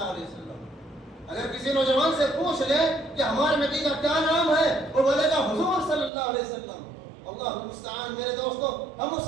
علیہ وسلم. اگر کسی نوجوان سے پوچھ لیں کہ ہمارے نبی کا کیا نام ہے، وہ بولے گا حضور صلی اللہ علیہ وسلم. اللہ المستعان. میرے دوستو، ہم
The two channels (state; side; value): drops out; left; at 6.1 s